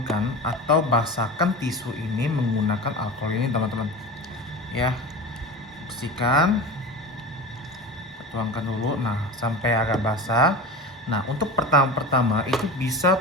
atau basahkan tisu ini menggunakan alkohol ini teman-teman ya. Bersihkan, tuangkan dulu. Nah, sampai agak basah. Nah, untuk pertama itu bisa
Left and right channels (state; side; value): normal; both; correlation 0.30